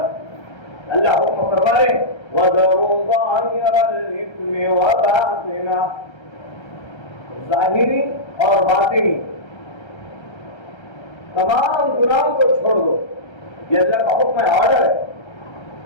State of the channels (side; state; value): right; late; 1.3 ms